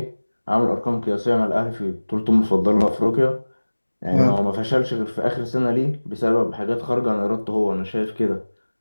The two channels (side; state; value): both; inverted; correlation -1.00